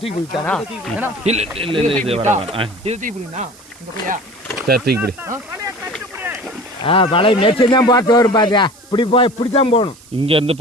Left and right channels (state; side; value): noise; right; hiss, 24 dB below the sound